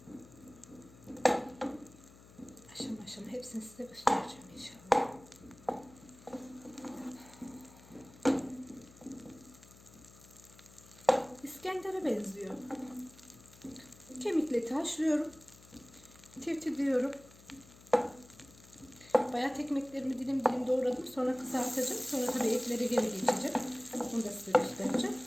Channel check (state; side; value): noise; left; hum, 22 dB below the sound